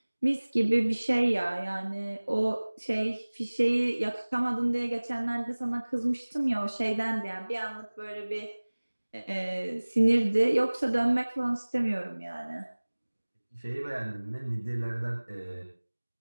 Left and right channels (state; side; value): inverted; both; correlation -1.00